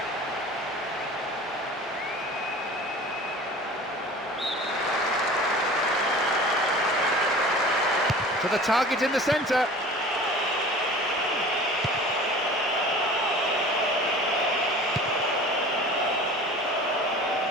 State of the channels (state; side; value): normal; both; correlation 0.41